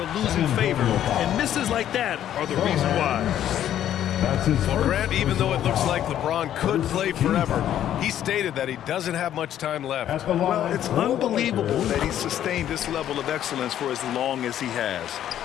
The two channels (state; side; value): quieter; right; 11.1 dB